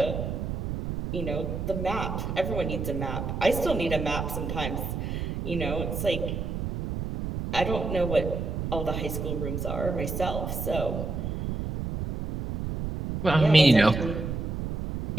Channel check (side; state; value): right; noise; rumble, 4 dB below the sound